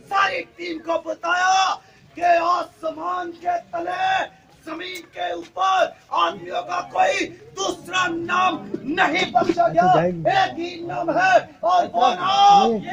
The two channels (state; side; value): identical; both; correlation 1.00